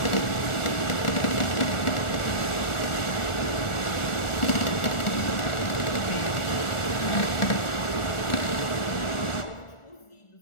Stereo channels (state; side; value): late; right; 1.4 ms